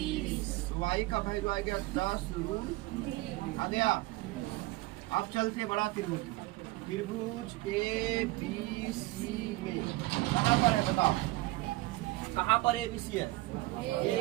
y का वैल्यू आ गया 10 √3 आ गया। अब चलते बड़ा त्रिभुज ABC में कहाँ पर है बताओ? कहाँ पर ABC है?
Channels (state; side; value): quieter; left; 20.0 dB